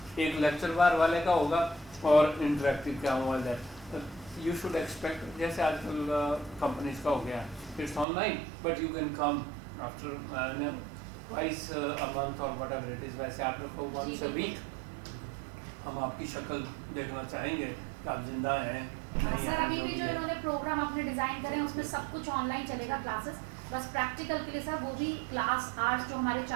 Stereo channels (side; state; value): left; drops out; at 8.1 s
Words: एक लेक्चर बार वाले का होगा और इंटरेक्टिव क्या हुआ। यू शुड एक्सपेक्ट जैसे आजकल कंपनीज का हो गया, it's online but you can come after twice a month और वट एवर इट इज़। वैसे आप लोग को वंस अ वीक हम आपकी शक्ल देखना चाहेंगे कि आप जिंदा हैं नहीं सर। हैं, अभी भी जो इन्होंने प्रोग्राम अपने डिजाइन करे हैं उसमें सब कुछ ऑनलाइन चलेगा क्लासेस, बस प्रैक्टिकल के लिए सर वो भी क्लास आवर्स जो हमारे